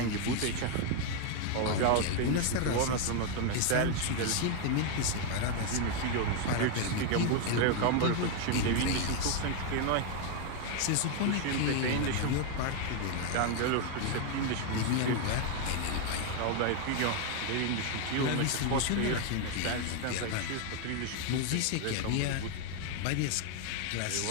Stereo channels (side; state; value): both; different; correlation 0.00